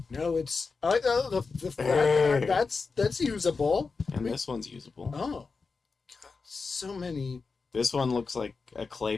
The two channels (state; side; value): quieter; right; 4.6 dB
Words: No, it's I like that's usable. and this one's usable. Oh, God, so many. This one looks like a clay